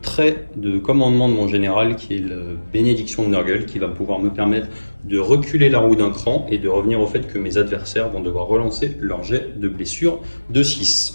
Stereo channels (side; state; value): both; inverted; correlation -1.00